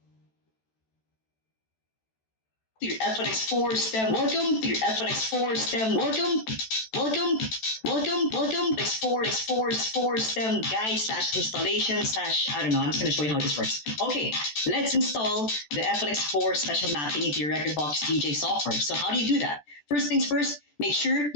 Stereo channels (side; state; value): right; late; 14 ms